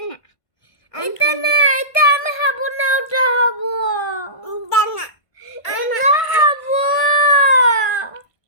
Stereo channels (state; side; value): late; right; 1.5 ms